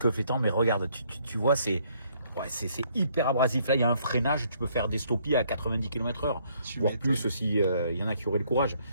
flottants, mais regarde, tu vois, c'est hyper abrasif. Là, il y a un freinage, tu peux faire des stoppies à 90 km/h, voire plus si il y en a qui auraient le courage.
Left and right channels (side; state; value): both; inverted; correlation -0.66